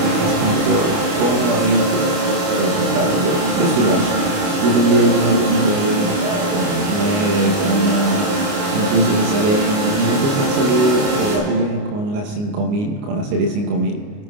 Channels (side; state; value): left; late; 29 ms